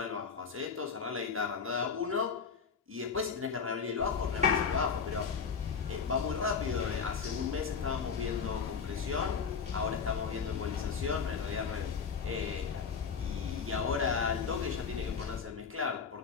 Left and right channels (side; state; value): right; quieter; 6.0 dB